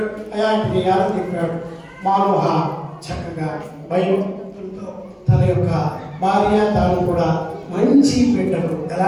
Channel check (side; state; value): both; identical; correlation 1.00